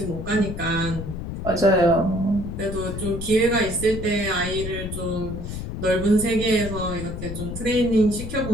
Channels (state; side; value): noise; left; rumble, 7 dB below the sound